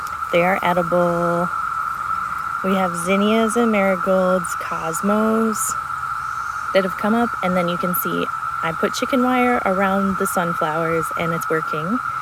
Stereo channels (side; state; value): both; identical; correlation 1.00